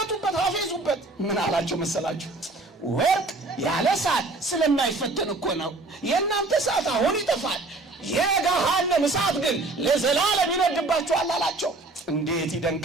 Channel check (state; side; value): quieter; left; 3.1 dB